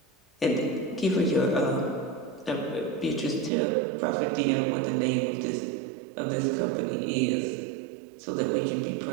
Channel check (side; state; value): left; drops out; at 3.5 s